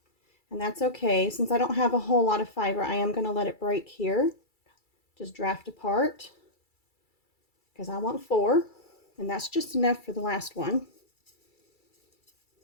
And that's okay. Since I don't have a whole lot of fiber, I am going to let it break here. Just draft apart because I want 4. And that's just enough for the last one.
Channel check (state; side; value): late; right; 2.3 ms